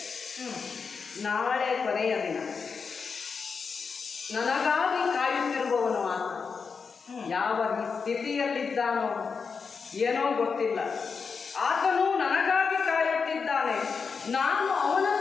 ನಾಳೆ ಕೊನೆಯ ದಿನ. ನನಗಾಗಿ ಕಾಯುತ್ತಿರುವವನು ಆತ. ಯಾವ ಸ್ಥಿತಿಯಲ್ಲಿದ್ದಾನೋ ಏನೋ ಗೊತ್ತಿಲ್ಲ. ಆತನು ನನಗಾಗಿ ಕಾಯುತ್ತಿದ್ದಾನೆ. ನಾನು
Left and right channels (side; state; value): right; quieter; 5.4 dB